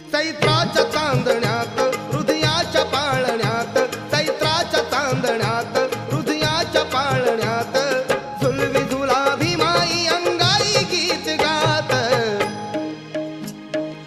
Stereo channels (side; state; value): both; identical; correlation 1.00